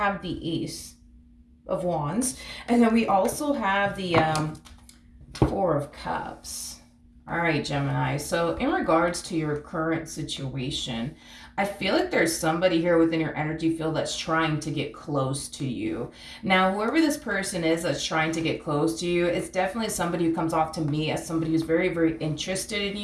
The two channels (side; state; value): both; identical; correlation 1.00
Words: the Ace of Wands, and then we also have the Four of Cups. All right, Gemini, so in regards to your current situation, I feel like there's somebody here within your energy field that's trying to get close to you. Now, whoever this person is that's trying to get close to you, it's definitely somebody who comes off to me as somebody who's very, very interested in